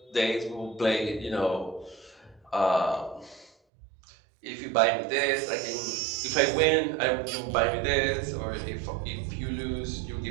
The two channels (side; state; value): left; drops out; at 3.5 s